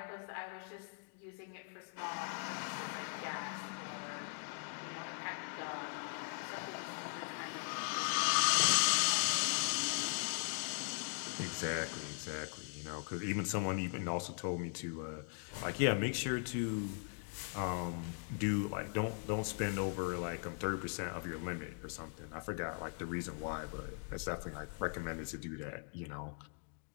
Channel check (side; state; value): right; silent; 51 dB below the other